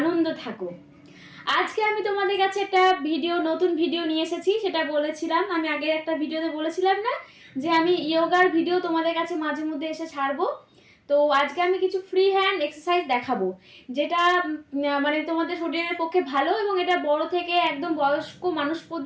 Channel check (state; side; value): identical; both; correlation 1.00